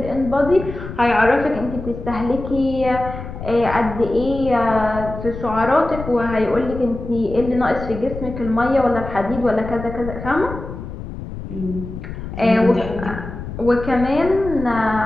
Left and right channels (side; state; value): left; noise; rumble, 9 dB below the sound